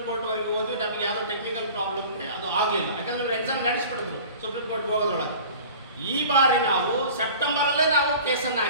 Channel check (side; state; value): both; inverted; correlation -0.42